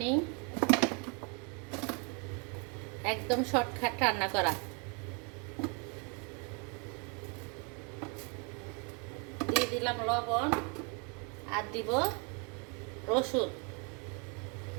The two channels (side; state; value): left; quieter; 34.6 dB